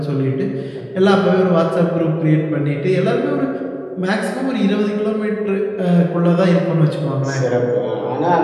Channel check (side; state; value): both; identical; correlation 1.00